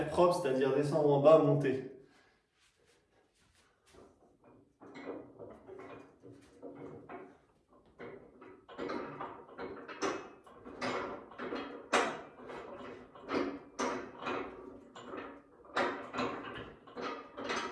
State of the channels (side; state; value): both; identical; correlation 1.00